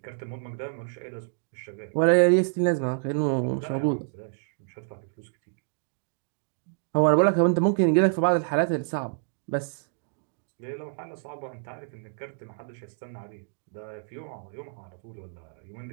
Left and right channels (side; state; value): left; silent; digital silence